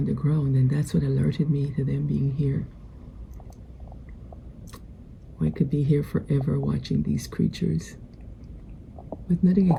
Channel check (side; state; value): both; identical; correlation 1.00